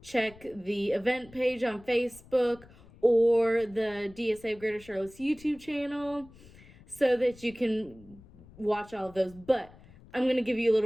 check the event page on Facebook or the DSA of Greater Charlotte's YouTube channel so that you can watch all of those. But I'm going to give you a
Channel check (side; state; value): left; noise; rumble, 23 dB below the sound